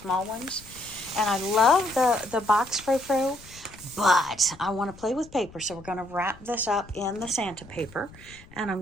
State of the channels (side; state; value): left; noise; rumble, 21 dB below the sound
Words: ones. And I love the box frou-frou, but I want to play with paper. So we're going to wrap this up in the Santa paper. And I'm